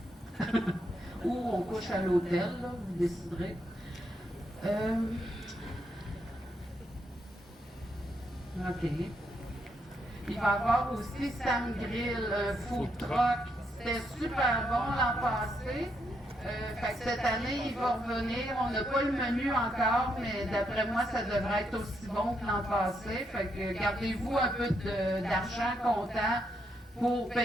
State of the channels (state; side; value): normal; both; correlation 0.78